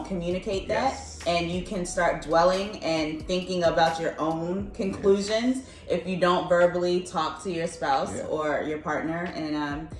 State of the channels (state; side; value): identical; both; correlation 1.00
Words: communicate that, and you can start dwelling and thinking about your own conclusions if you don't verbally talk to your spouse or your partner, and